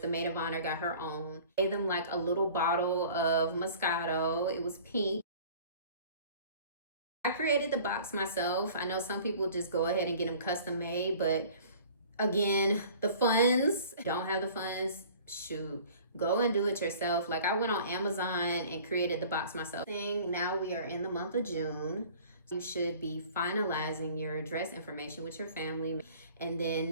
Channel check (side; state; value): both; inverted; correlation -0.47